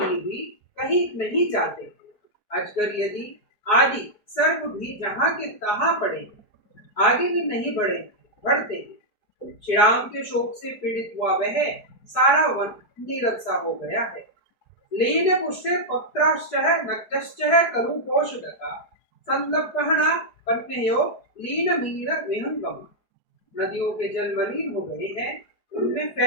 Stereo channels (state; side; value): late; right; 4.8 ms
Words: भी कहीं नहीं जाते। अजगर यदि आदि सर्प भी जहाँ के तहाँ पड़े आगे भी नहीं बढ़ते। श्री राम के शोक से पीड़ित हुआ वह सारा वन नीरव सा हो गया है। लीन पुष्टे पत्राश्चः नक्तश्चः करुपोषदका संलप्पहना पन्नेयो लीन मीन विहंगम। नदियों के जल मलिन हो गए हैं, उनमें